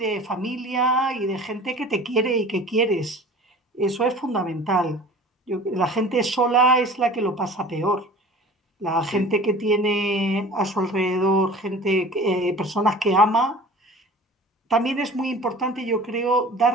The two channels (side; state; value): both; normal; correlation 0.42